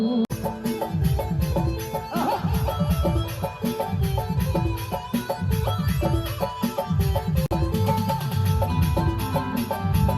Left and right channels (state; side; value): identical; both; correlation 1.00